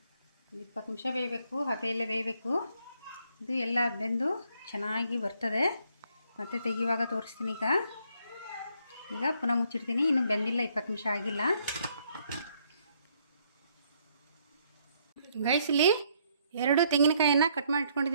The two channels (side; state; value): both; inverted; correlation -0.70